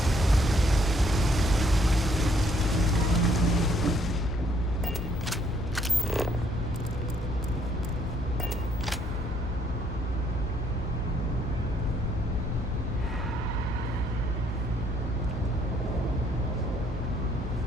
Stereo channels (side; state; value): both; normal; correlation 0.67